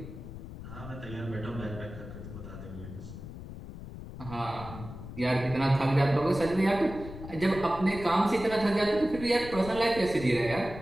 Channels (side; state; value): left; noise; rumble, 12 dB below the sound